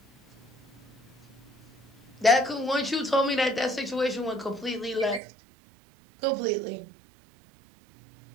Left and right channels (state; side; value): drops out; left; at 5.2 s